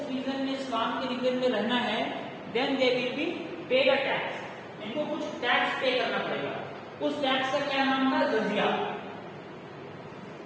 रीजन में, इस्लाम के रीजन में रहना है, then they will be paid a tax, इनको कुछ टैक्स पे करना पड़ेगा। उस टैक्स का क्या नाम था, jizya.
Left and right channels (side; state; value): both; identical; correlation 1.00